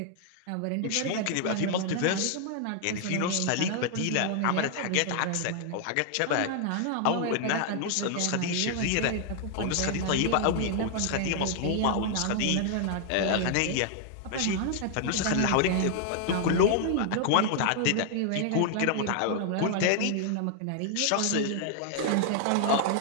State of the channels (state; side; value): different; both; correlation 0.00